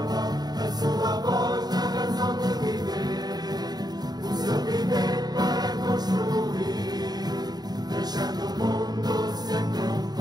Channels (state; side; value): late; left; 0.20 ms